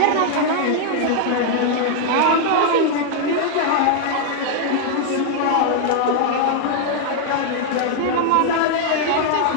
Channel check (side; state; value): both; different; correlation 0.00